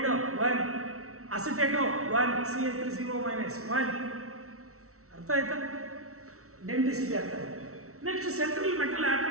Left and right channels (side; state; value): left; late; 0.63 ms